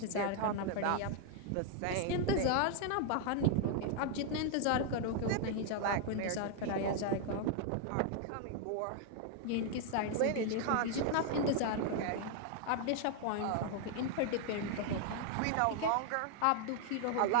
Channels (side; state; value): both; different; correlation 0.00